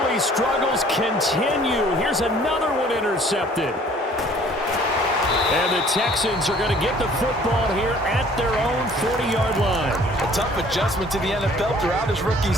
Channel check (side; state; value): both; normal; correlation 0.55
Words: struggles continue. Here's another one intercepted. And the Texans are going to get the football here at their own 40-yard line. A tough adjustment to the NFL throughout his rookie